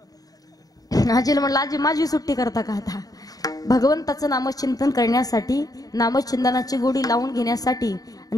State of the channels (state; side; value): late; right; 0.18 ms